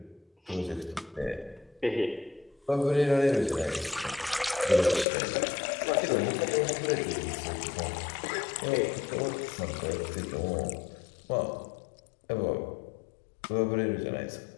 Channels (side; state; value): right; drops out; at 5.1 s